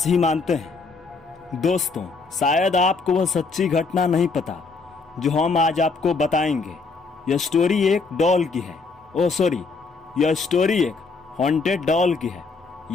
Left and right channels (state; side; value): quieter; right; 4.3 dB